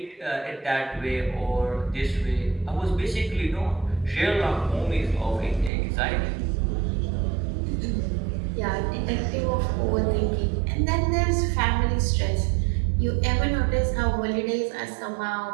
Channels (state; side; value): drops out; left; at 5.7 s